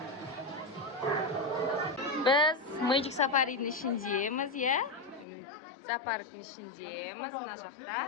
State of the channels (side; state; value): right; drops out; at 5.2 s